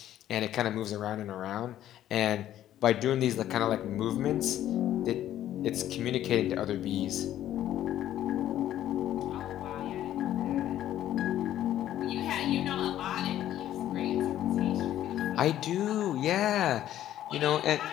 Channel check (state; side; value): quieter; right; 12.2 dB